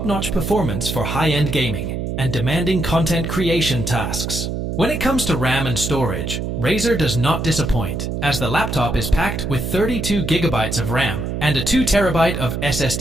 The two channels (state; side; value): noise; right; hum, 3 dB below the sound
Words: performance for high-end gaming and demanding content creation tasks. When it comes to RAM and storage, Razer does not disappoint, as the laptop is packed with 32GB of RAM and a 2TB of